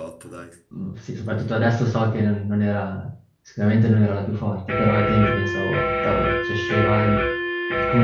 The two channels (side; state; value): both; identical; correlation 1.00